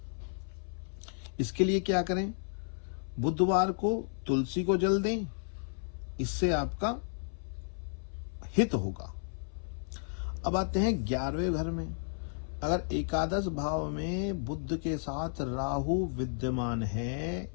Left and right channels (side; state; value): right; silent; 56 dB below the other